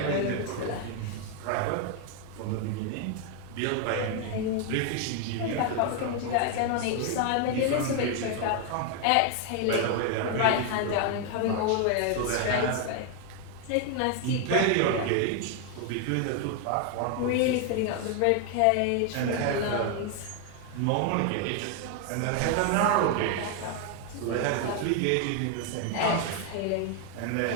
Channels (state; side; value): different; both; correlation 0.01